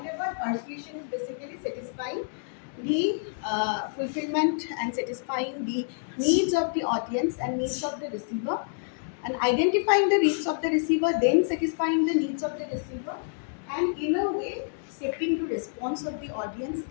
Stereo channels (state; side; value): silent; right; digital silence